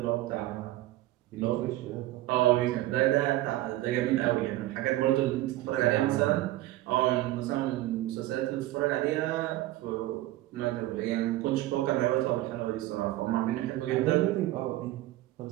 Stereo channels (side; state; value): left; quieter; 16.2 dB